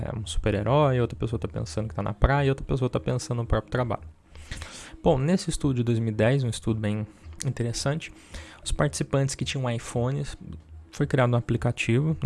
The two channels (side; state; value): both; identical; correlation 1.00